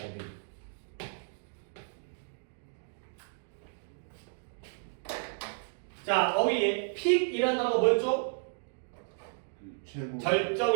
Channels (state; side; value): silent; left; digital silence